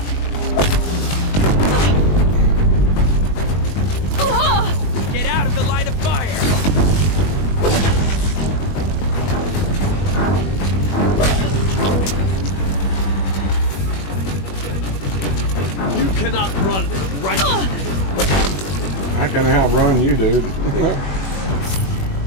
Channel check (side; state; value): right; late; 21 ms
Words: Get out of the line of fire! You cannot run right. I can outrun you, dude.